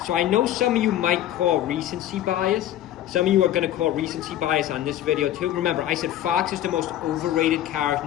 So I know some of you might call recency bias. Some of you are going to call recency bias on this video too. Remember, I said Fox is the most overrated character in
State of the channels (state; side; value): quieter; right; 12.3 dB